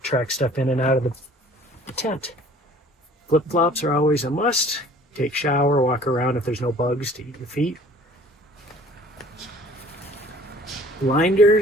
track stuff in and out of the tent. Flip-flops are always a must. Take shower, walk around if there's no bugs to eat your feet.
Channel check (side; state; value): both; normal; correlation 0.52